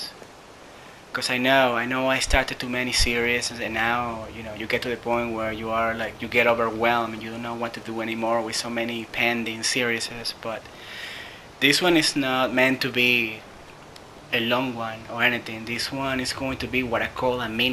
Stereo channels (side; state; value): both; identical; correlation 1.00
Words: Because I know I started too many series, and now, you get to the point where you are like, you get overwhelmed and you don't know what to do anymore with so many pending series. But this one is not meant to be a long one or anything. This one is going to be what I call a